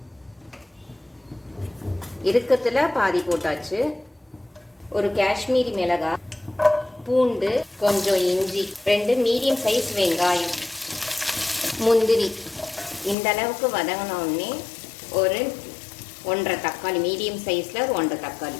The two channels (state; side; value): drops out; right; at 13.2 s